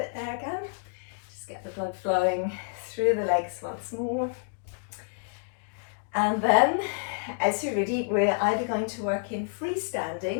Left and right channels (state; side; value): silent; right; digital silence